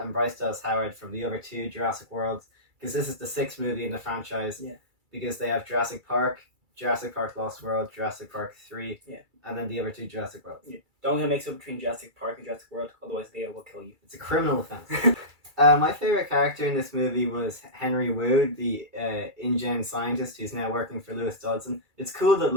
Bryce Dallas Howard from the other two Jurassic Worlds, because this is the sixth movie in the franchise. Yeah. Because they have Jurassic Park Lost World, Jurassic Park 3, Yeah. and then the other two Jurassic Worlds. Yeah. Don't get mixed up between Jurassic Park and Jurassic World, otherwise Leo will kill you. It's a criminal offense. My favorite character in this movie was Henry Wu, the InGen scientist who's now working for Lewis Dodson. It's cool that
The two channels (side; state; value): left; late; 2.3 ms